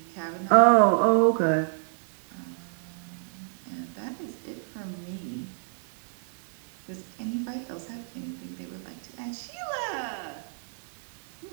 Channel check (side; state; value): left; silent; digital silence